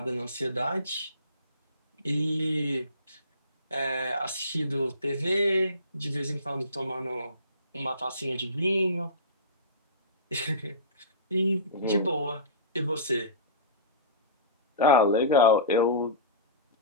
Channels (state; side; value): inverted; both; correlation -0.32